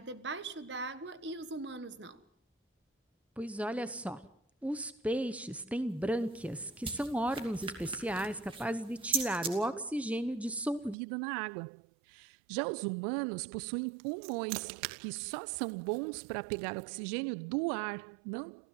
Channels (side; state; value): left; drops out; at 11.0 s